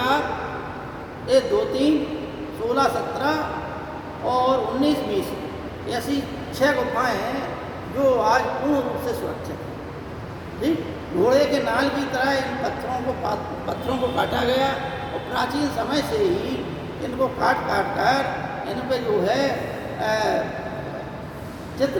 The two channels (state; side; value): identical; both; correlation 1.00